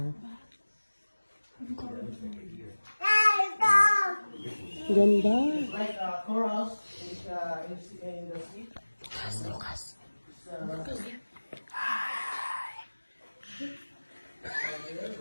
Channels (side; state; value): both; inverted; correlation -1.00